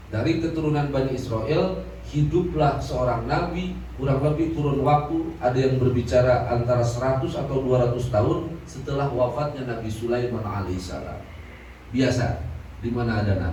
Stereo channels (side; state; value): both; identical; correlation 1.00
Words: dari keturunan Bani Israel hiduplah seorang nabi, kurang lebih kurun waktu ada yang berbicara antara 100 atau 200 tahun setelah wafatnya Nabi Sulaiman alaihissalam. Biasa, di mana ada